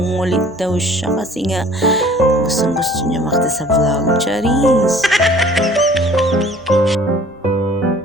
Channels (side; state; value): both; normal; correlation 0.52